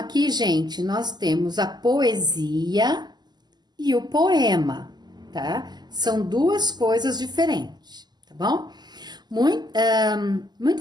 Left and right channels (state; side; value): late; left; 0.21 ms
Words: gente, nós temos a poesia e o poema, tá? São duas coisas diferentes, tá bom?